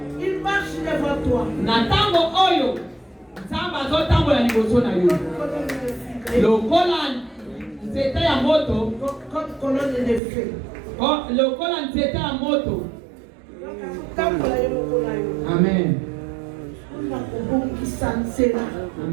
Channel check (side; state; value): left; drops out; at 10.2 s